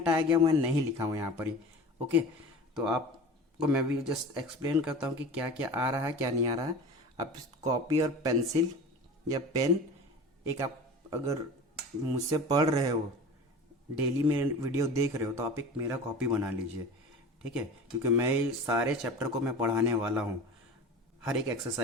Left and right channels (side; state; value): both; normal; correlation 0.35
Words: गया मैं नहीं लिखा हूँ यहाँ पर ही, ओके। तो आपको मैं भी जस्ट एक्सप्लेन करता हूँ कि क्या क्या आ रहा है क्या नहीं आ रहा है। आप कॉपी और पेंसिल या पेन, एक आप अगर मुझसे पढ़ रहे हो, डेली में वीडियो देख रहे हो, तो आप एक मेरा कॉपी बना लीजिए, ठीक है। क्योंकि मैं सारे चैप्टर को मैं पढ़ाने वाला हूँ, हर एक